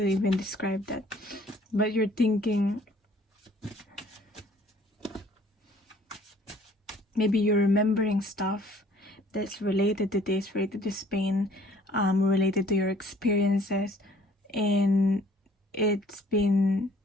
even describe that, but you're thinking, maybe you're remembering stuff that's related to this, related to Spain, related to your experiences, and it's been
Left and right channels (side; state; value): both; normal; correlation 0.57